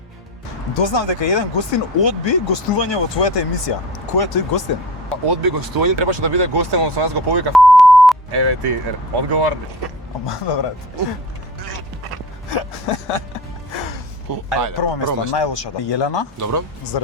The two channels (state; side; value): normal; both; correlation 0.36